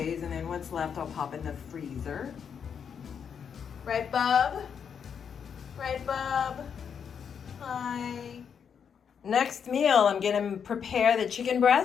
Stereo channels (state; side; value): quieter; right; 7.2 dB